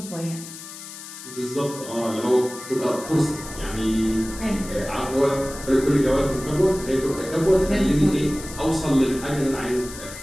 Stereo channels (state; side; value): noise; left; hiss, 13 dB below the sound